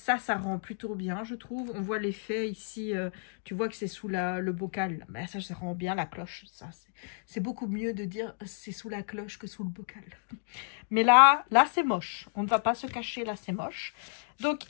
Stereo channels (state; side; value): silent; right; digital silence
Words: rend plutôt bien, je trouve. On voit l'effet ici, tu vois que c'est sous le bocal. Mais ça rend bien la cloche. Ça, c'est beaucoup mieux de dire c'est sous la cloche que sous le bocal. Mais là c'est moche. On ne va pas se cacher, là, c'est moche. Donc,